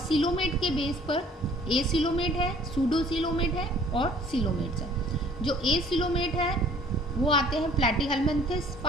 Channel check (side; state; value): both; normal; correlation 0.54